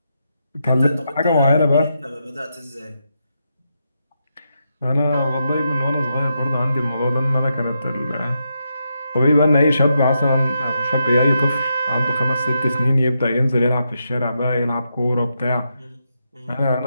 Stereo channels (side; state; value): both; inverted; correlation -0.83